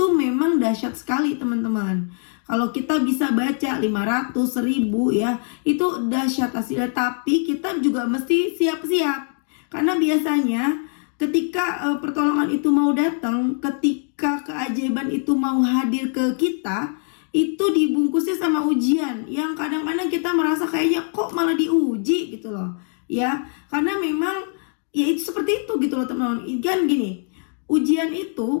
memang dahsyat sekali teman-teman. Kalau kita bisa baca 500, 1000 ya, itu dahsyat hasilnya. Tapi kita juga mesti siap-siap. Karena biasanya ketika pertolongan itu mau datang, ketika keajaiban itu mau hadir ke kita, itu dibungkusnya sama ujian yang kadang-kadang kita merasa kayaknya kok malah diuji gitu loh. Ya, karena memang ya itu seperti itu gitu loh teman-teman. Kan gini, ujian itu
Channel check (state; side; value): silent; right; 55 dB below the other